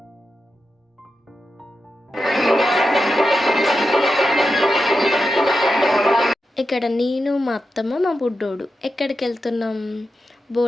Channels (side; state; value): both; normal; correlation 0.89